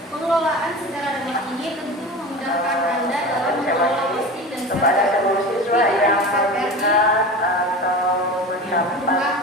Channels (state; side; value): normal; both; correlation 0.31